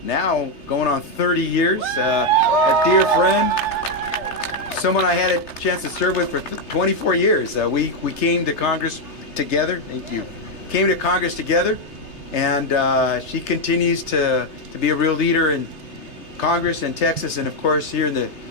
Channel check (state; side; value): late; right; 3.3 ms